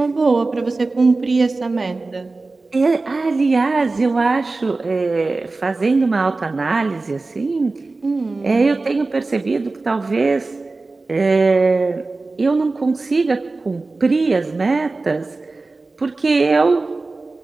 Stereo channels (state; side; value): quieter; left; 3.5 dB